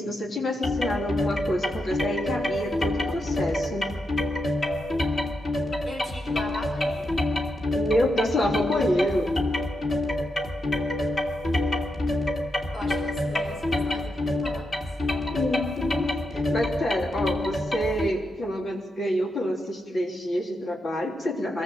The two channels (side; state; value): both; normal; correlation 0.84